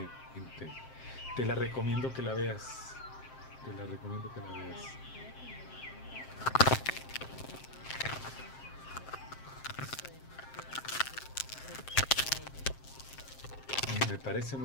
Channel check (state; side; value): late; right; 7.6 ms